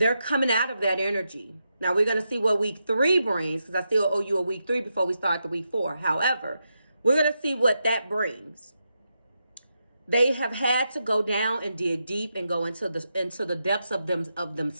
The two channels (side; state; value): both; inverted; correlation -0.85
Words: coming out of that energy. Now, we're going to see what week 3 brings because I still owe you a week 3 before we start the week 4. However, we're going to see what that brings. They have had to go down and dig deep and go into the depths of